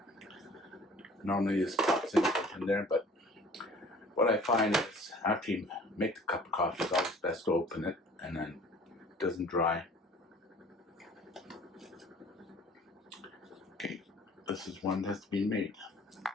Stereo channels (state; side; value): normal; both; correlation 0.50